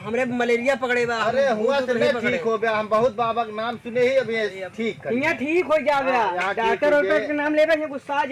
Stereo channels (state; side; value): identical; both; correlation 1.00